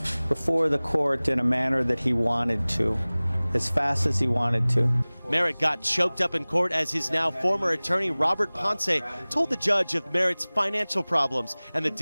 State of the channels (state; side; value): inverted; both; correlation -1.00